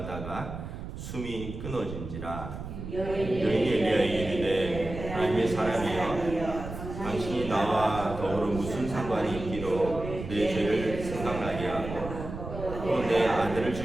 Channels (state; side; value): noise; right; rumble, 9 dB below the sound